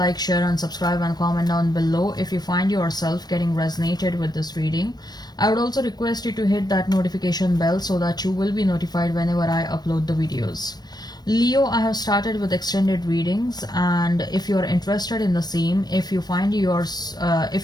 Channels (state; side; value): late; right; 0.19 ms